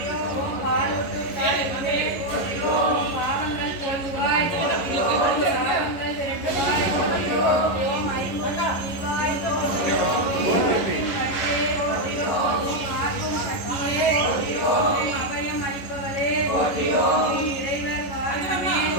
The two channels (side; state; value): right; late; 11 ms